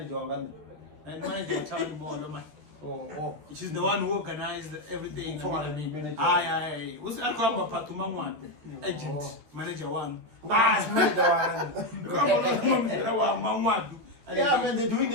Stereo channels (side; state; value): left; late; 13 ms